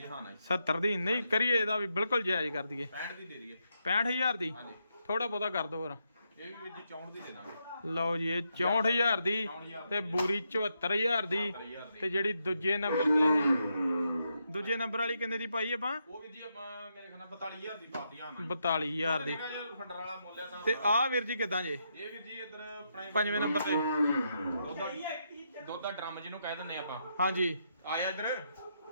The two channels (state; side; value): inverted; both; correlation -0.81